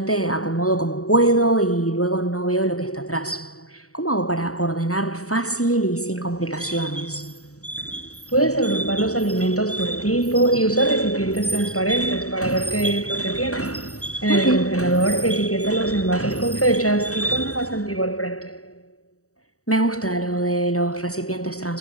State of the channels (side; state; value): right; late; 0.65 ms